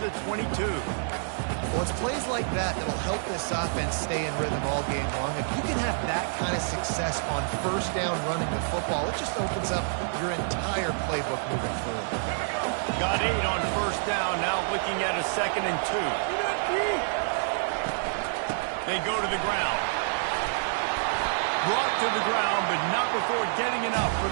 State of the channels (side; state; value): left; silent; digital silence